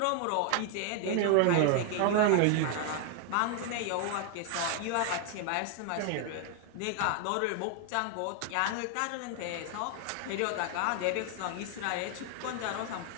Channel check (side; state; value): both; different; correlation 0.00